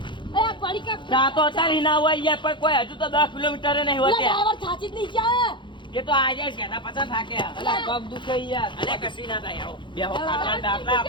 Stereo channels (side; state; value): right; late; 0.23 ms